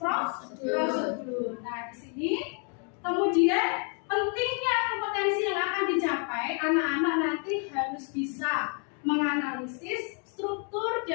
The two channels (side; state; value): right; quieter; 40.0 dB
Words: Nah, di sini kemudian pentingnya kompetensi yang akan dicapai anak-anak nanti harus bisa menganalisis struktur